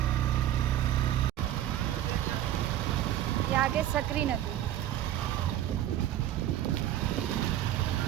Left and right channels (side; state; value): left; quieter; 12.1 dB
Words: ये आगे सकरी नदी